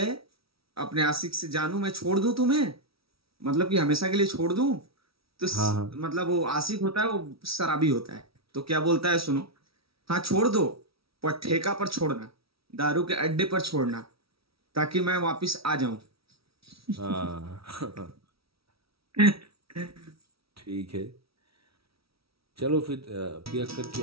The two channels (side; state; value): left; late; 0.76 ms